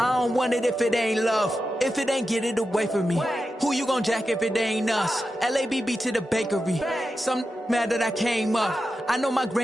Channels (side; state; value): both; normal; correlation 0.90